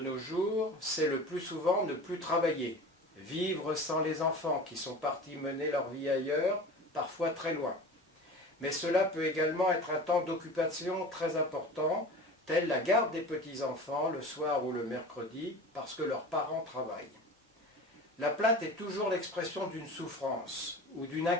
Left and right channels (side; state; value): both; normal; correlation 0.36